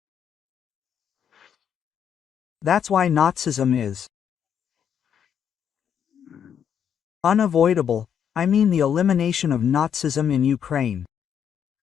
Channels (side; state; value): right; quieter; 8.4 dB